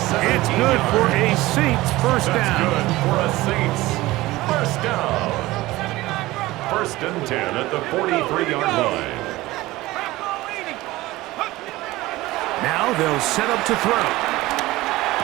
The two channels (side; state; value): left; quieter; 18.5 dB